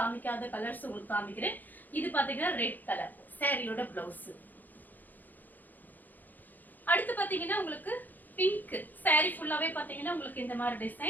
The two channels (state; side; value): late; right; 0.085 ms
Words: கலர்ஸ் உங்களுக்கு காமிக்கிறேன். இது பாத்தீங்கன்னா ரெட் கலர் சாரியோட பிளவுஸ். அடுத்து பாத்தீங்கன்னா உங்களுக்கு பிங்க் சாரி ஃபுல்லாவே பாத்தீங்கன்னா உங்களுக்கு இந்த மாதிரி